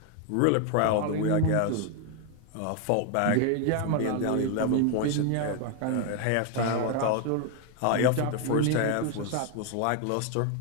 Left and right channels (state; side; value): different; both; correlation 0.01